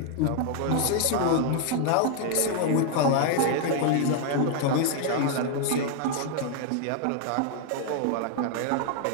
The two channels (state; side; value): different; both; correlation 0.00